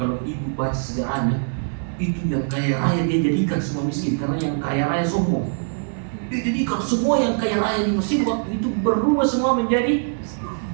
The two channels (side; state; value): left; silent; digital silence